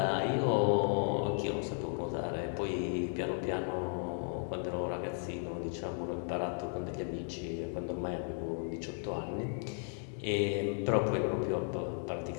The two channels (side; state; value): right; silent; 54 dB below the other